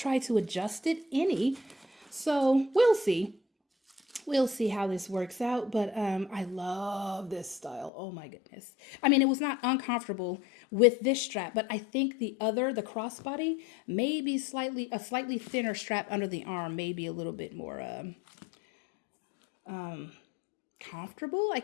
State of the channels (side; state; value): right; drops out; at 7.9 s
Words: to adjust it any. So we'll see. We'll see how this works out, but I love this style. Oh my goodness. I mean, it was not uncomfortable with this strap, but I think the crossbody may be a slightly thinner strap under the arm, maybe a little bit more comfortable.